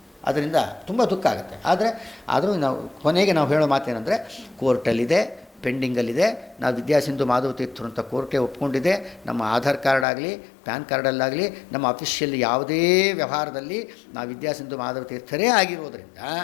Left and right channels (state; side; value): drops out; right; at 10.1 s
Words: ಅದರಿಂದ ತುಂಬ ದುಃಖ ಆಗುತ್ತೆ. ಆದರೂ ಕೊನೆಗೆ ನಾವು ಹೇಳೋ ಮಾತೇನೆಂದರೆ, ಕೋರ್ಟಲ್ಲಿದೆ, ಪೆಂಡಿಂಗಲ್ಲಿದೆ. ನಾವು ವಿದ್ಯಾಸಿಂಧು ಮಾಧವ ತೀರ್ಥರು ಅಂತ ಕೋರ್ಟೇ ಒಪ್ಕೊಂಡಿದೆ. ನಮ್ಮ ಆಧಾರ್ ಕಾರ್ಡ್ ಆಗಲಿ, ಪ್ಯಾನ್ ಕಾರ್ಡಲ್ಲಾಗಲಿ, ನಮ್ಮ ಅಫಿಷಿಯಲ್ ಯಾವುದೇ ವ್ಯವಹಾರದಲ್ಲಿ ನಾವು ವಿದ್ಯಾಸಿಂಧು ಮಾಧವ ತೀರ್ಥರೇ ಆಗಿರೋದರಿಂದ